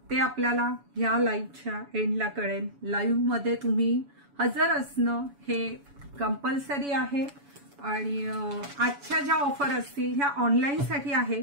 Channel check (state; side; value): late; left; 7.1 ms